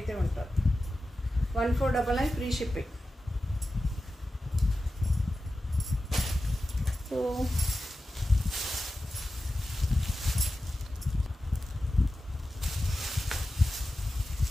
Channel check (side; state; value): both; normal; correlation 0.93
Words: ఉంటుంది. 1499 free shipping. So